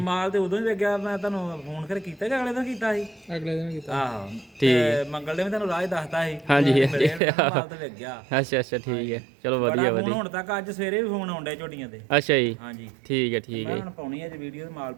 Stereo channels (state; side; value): drops out; left; at 7.2 s